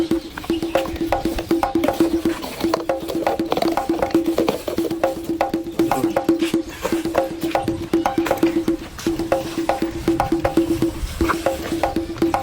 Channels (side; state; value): both; identical; correlation 1.00